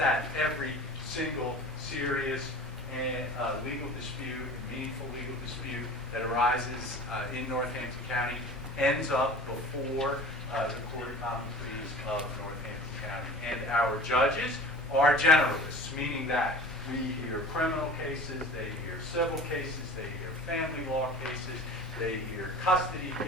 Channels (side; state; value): both; normal; correlation 0.39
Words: every single serious and legal dispute, meaningful legal dispute that arises in Northampton County ends up before the Court of Common Pleas of Northampton County. And our judges are generalists, meaning that we hear criminal cases, they hear civil cases, they hear family law cases, they hear custody